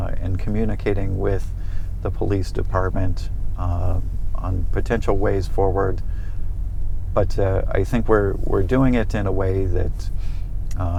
in communicating with the police department on potential ways forward. But I think we're doing it in a way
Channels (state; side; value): identical; both; correlation 1.00